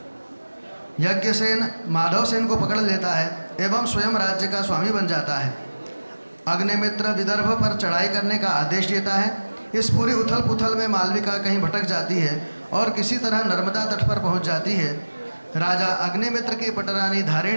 यज्ञसेन माधवसेन को पकड़ लेता है एवं स्वयं राज्य का स्वामी बन जाता है। अग्निमित्र विदर्भ पर चढ़ाई करने का आदेश देता है। इस पूरी उथल पुथल में मालविका कहीं भटक जाती है और किसी तरह नर्मदा तट पर पहुंच जाती है। राजा अग्निमित्र की पटरानी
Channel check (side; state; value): both; inverted; correlation -1.00